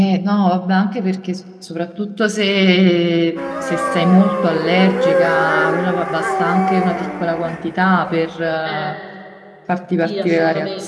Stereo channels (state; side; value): identical; both; correlation 1.00